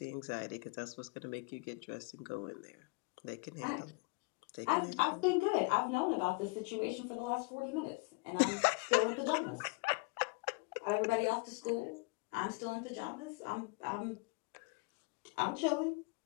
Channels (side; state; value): right; quieter; 29.6 dB